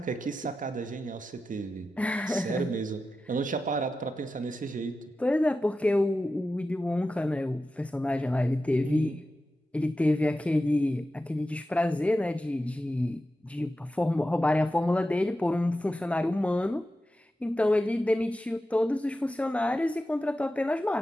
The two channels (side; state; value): both; normal; correlation 0.92